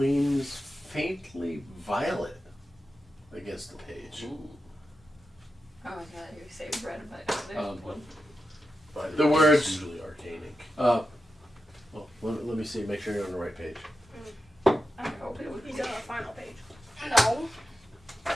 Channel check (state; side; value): normal; both; correlation 0.90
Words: faintly violet against the page. Oh my god, you say red, but The words- It's usually arcane ink. Well, let me see, make sure you're on the right page. I hope it would be. He's on the final page. No.